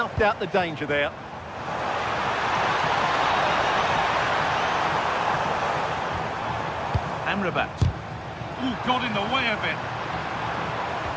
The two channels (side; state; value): both; identical; correlation 1.00